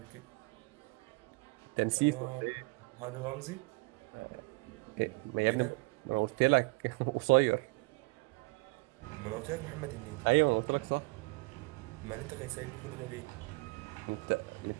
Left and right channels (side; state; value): left; quieter; 27.1 dB